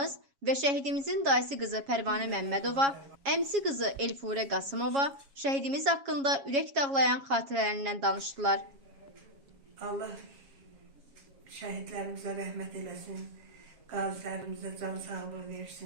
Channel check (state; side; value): late; left; 7.3 ms